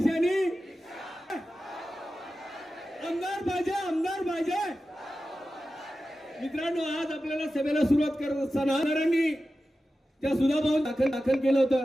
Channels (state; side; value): normal; both; correlation 0.93